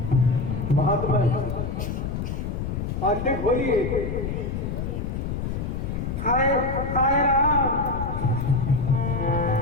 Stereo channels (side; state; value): left; noise; rumble, 3 dB below the sound